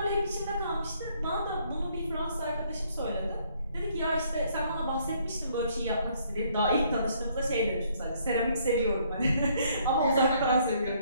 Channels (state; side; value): inverted; both; correlation -0.66